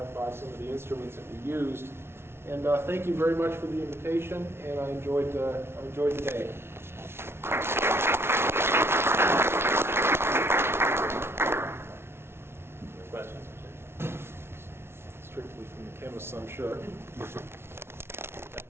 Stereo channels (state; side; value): late; left; 0.12 ms